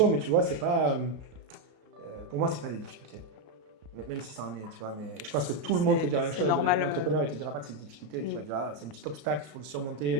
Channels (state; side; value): late; left; 33 ms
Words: mais tu vois, c'est pas, pour moi, c'est pas des difficultés. Même si ça en est, tu vois, mais je pense que tout le monde te dira la même chose. L'entrepreneur, il te dira pas que c'est des difficultés, tu vas dire, c'est un petit obstacle, il faut le